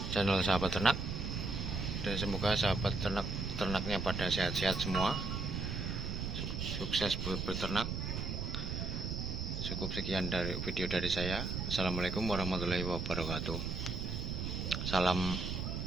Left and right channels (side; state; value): right; noise; rumble, 3 dB below the sound